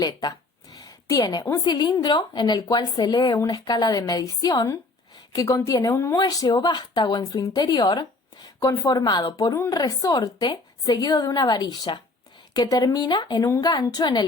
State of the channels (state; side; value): quieter; right; 3.2 dB